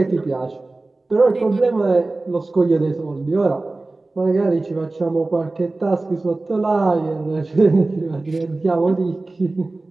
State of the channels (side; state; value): left; quieter; 3.1 dB